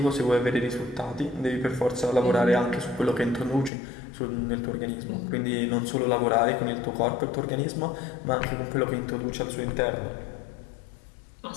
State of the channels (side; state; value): right; drops out; at 3.7 s